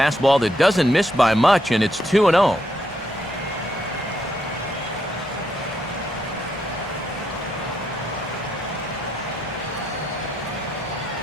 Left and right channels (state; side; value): normal; both; correlation 0.77